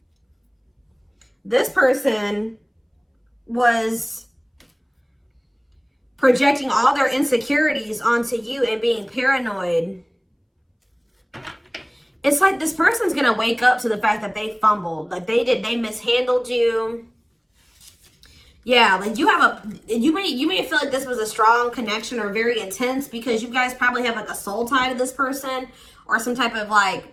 this person was projecting all their insecurities onto you and being paranoid. It's like this person's going to wake up to the fact that they fumbled. Like they mishandled you. Yeah, like you may feel like this was a strong connection or very intense because you guys probably have like a soul tie to this person or some type of like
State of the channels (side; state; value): both; identical; correlation 1.00